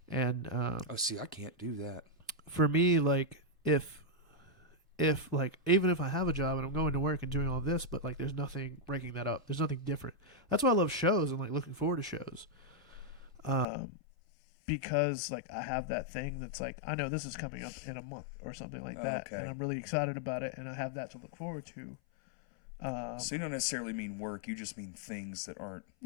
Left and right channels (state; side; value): drops out; right; at 13.7 s